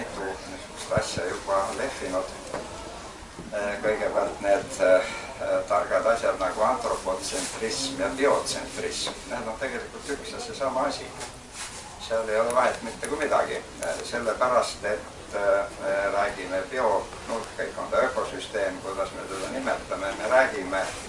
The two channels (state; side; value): identical; both; correlation 1.00